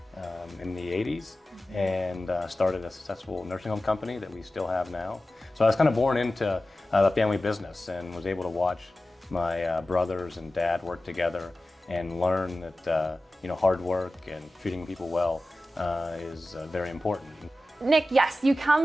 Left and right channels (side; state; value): both; normal; correlation 0.95